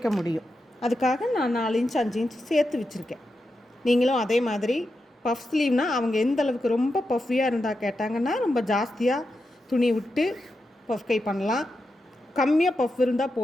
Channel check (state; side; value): normal; both; correlation 0.88